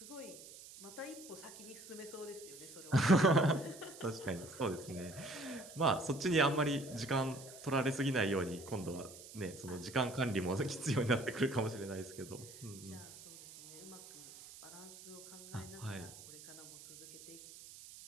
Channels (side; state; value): right; noise; hiss, 16 dB below the sound